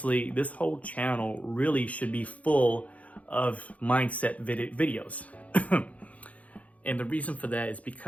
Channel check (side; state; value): right; late; 0.068 ms